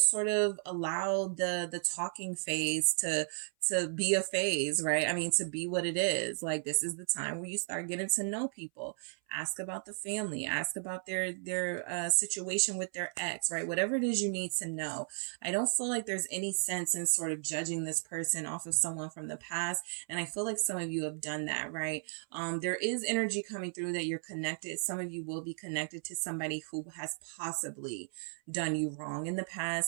of allow the talking phase to be a phase, right? I mean, to be what it is. Like, this is the time where you start getting to know people. Ask about the family, ask about their situation with their ex, right? Whatever it is you need to know. I don't feel like there's any sense in sort of judging this person off of someone from the past. And I feel like some of you have done that, right? There is energy coming through that you're connected. Some of you will be connected to somebody who has possibly done you wrong in the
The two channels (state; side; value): silent; left; 55 dB below the other